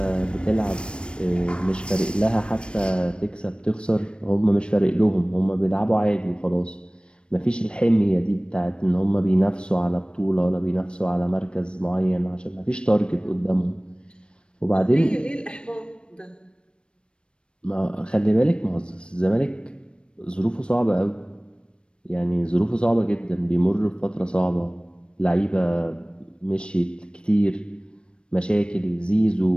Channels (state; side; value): late; right; 0.057 ms